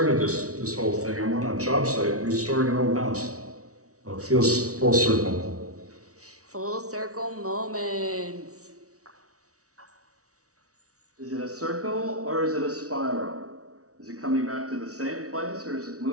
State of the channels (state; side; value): late; left; 0.66 ms